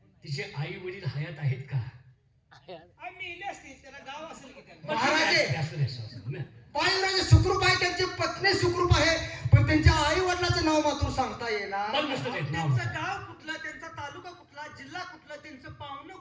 तिचे आई वडील हयात आहेत का? मेले असतील, त्याला गाव असेल की त्यांना. महाराजे, असू दे, असू दे. बाळयुवराज सुखरूप आहे, त्यांची पत्नी सुखरूप आहे, पण त्यांच्या आई वडिलाचं नाव मात्र सांगता येणार. पण नसतं देत नाव. त्यांचं गाव कुठलं, त्यांचा तालुका कुठला, जिल्हा कुठला, त्यांचं पाहुणं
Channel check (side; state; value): both; identical; correlation 1.00